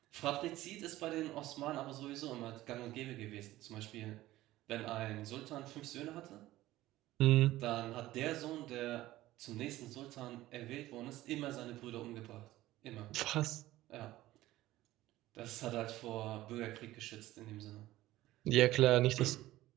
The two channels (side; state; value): left; quieter; 16.1 dB